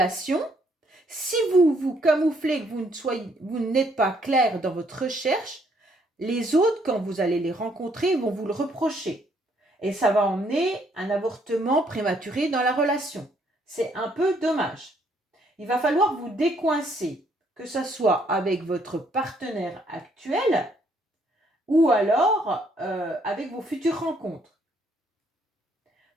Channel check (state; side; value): normal; both; correlation 0.68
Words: si vous vous camouflez, que vous n'êtes pas clair dans votre recherche, les autres, quand vous allez les rencontrer, vont vous le reprocher. Et ça va emmener un avortement prématuré dans la relation. C'est un peu dommage. Il va falloir vous décoincer, que ce soit avec votre partenaire actuel ou alors avec vos futures rencontres.